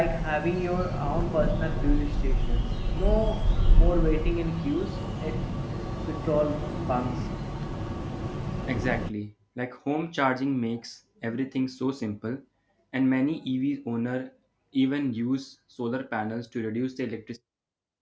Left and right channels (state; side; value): identical; both; correlation 1.00